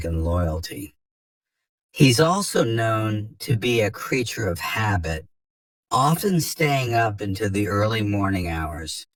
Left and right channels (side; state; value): both; identical; correlation 1.00